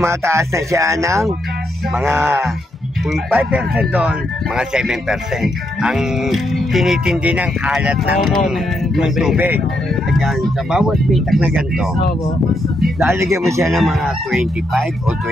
na siya ng mga, kung 5% doon, mga 7%. Ang tinitindi ng alat ng tubig. Ayan, sa bawat pitak na ganito, lalagyan mo siya ng mga 25 o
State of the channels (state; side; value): normal; both; correlation 0.79